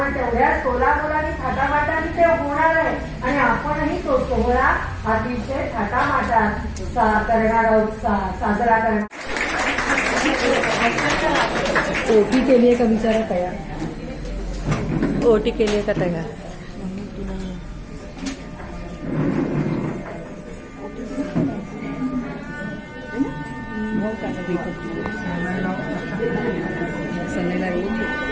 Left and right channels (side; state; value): both; identical; correlation 1.00